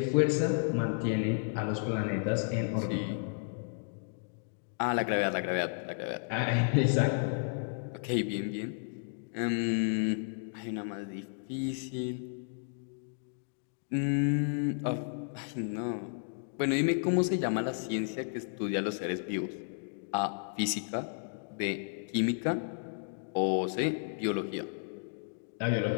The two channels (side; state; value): right; silent; digital silence